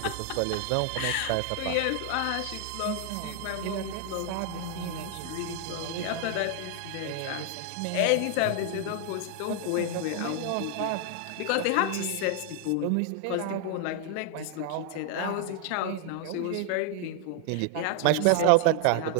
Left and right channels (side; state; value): both; different; correlation 0.00